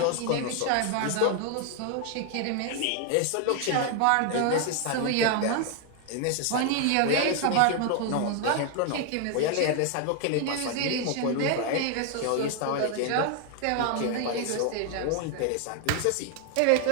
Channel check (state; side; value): different; both; correlation 0.00